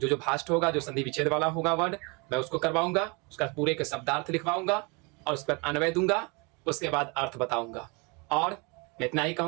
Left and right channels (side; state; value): left; quieter; 29.7 dB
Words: भाष्ट होगा, जो संधि विच्छेद वाला होगा वर्ड, मैं उसको करवाऊंगा। उसका पूरे के शब्दार्थ लिखवाऊंगा और उसके बाद अन्वय दूंगा। उसके बाद अर्थ बताऊंगा। और मैं इतना ही